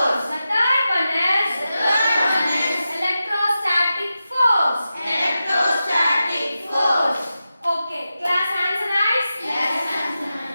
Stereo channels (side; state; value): both; inverted; correlation -0.91